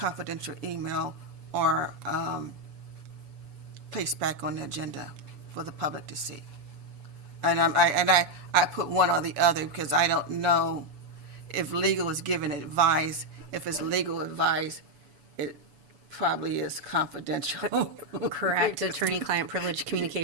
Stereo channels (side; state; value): left; late; 7.0 ms